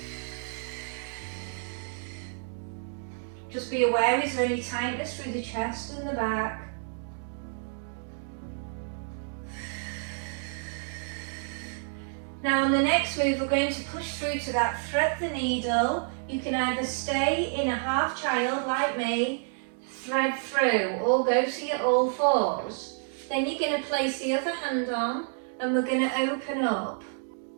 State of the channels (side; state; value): left; silent; 58 dB below the other